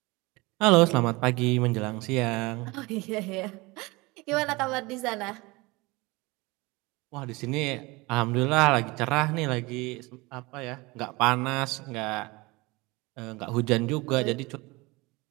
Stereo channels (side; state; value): left; quieter; 23.8 dB